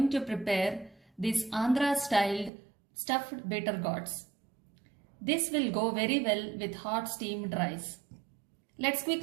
to prepare this Andhra styled stuffed bitter gourds. This will go very well with hot steamed rice. Let's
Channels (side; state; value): left; drops out; at 2.5 s